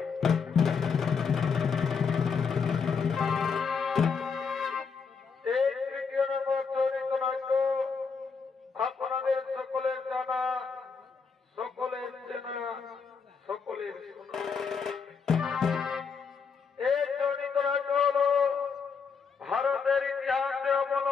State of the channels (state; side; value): quieter; right; 5.6 dB